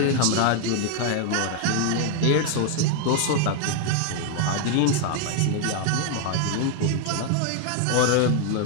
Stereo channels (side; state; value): both; different; correlation 0.00